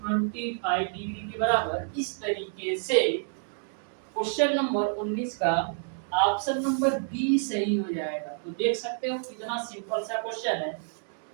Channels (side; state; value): left; silent; digital silence